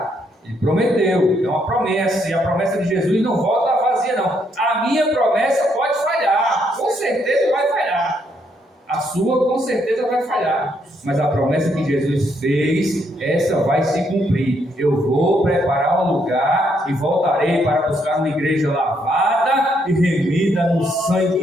Ele prometeu, é uma promessa, e a promessa de Jesus não volta vazia não. A minha promessa pode falhar, com certeza vai falhar. A sua com certeza vai falhar, mas a promessa que Jesus fez, essa vai se cumprir. Eu vou preparar um lugar e voltarei para buscar uma igreja lavada e remida no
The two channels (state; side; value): normal; both; correlation 0.74